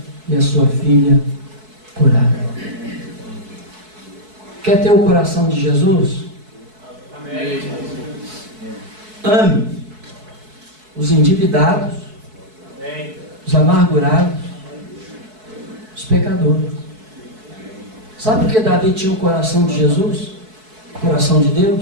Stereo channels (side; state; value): left; late; 4.6 ms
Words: e a sua filha curada. Quer ter o coração de Jesus? Amém. Ame os endividados, os amargurados, os pecadores. Sabe por que Davi tinha o coração de Jesus? O coração de